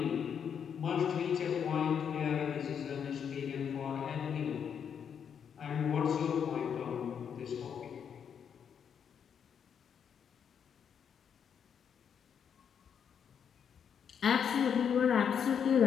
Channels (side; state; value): right; quieter; 7.7 dB